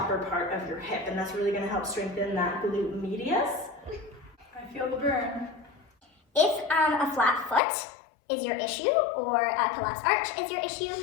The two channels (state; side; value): drops out; right; at 7.6 s